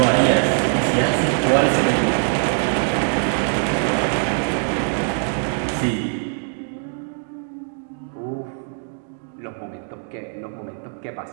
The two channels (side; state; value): left; silent; 56 dB below the other